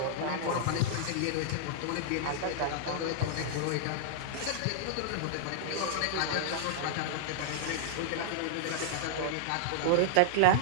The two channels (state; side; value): different; both; correlation -0.01